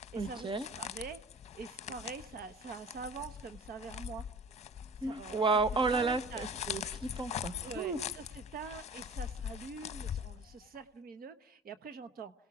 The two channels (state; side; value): normal; both; correlation 0.43